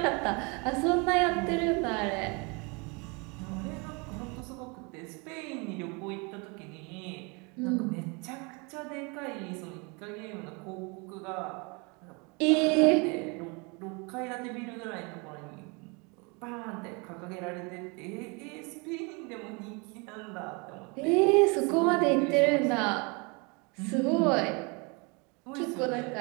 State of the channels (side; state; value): left; quieter; 30.6 dB